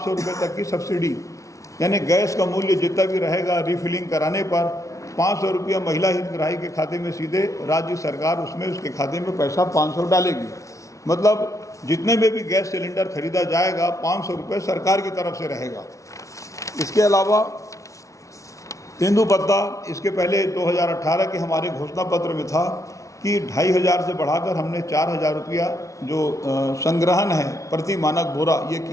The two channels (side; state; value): right; late; 0.15 ms